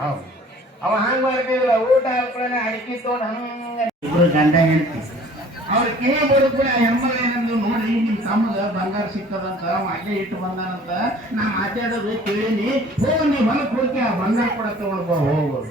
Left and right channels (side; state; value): both; normal; correlation 0.51